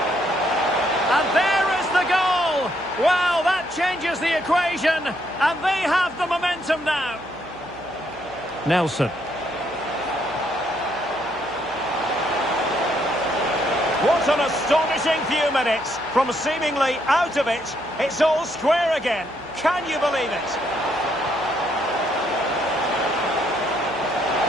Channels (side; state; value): right; noise; hum, 24 dB below the sound